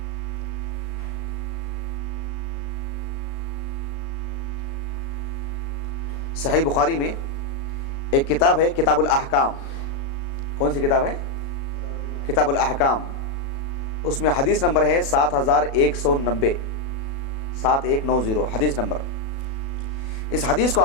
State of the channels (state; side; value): late; right; 36 ms